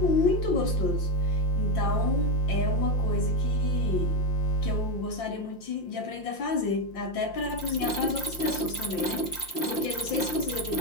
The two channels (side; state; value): right; late; 5.8 ms